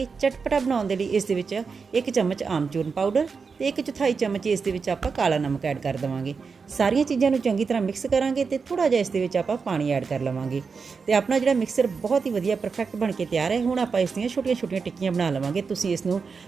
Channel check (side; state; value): left; quieter; 5.2 dB